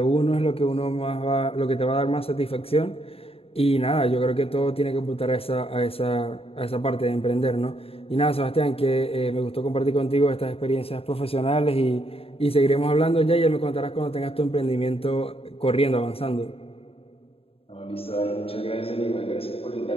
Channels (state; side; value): late; right; 0.28 ms